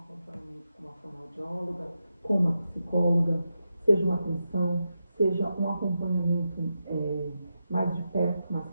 com uma fonoaudióloga, com uma psicóloga, seja uma atenção, seja um acompanhamento mais de perto, mais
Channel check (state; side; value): inverted; both; correlation -0.88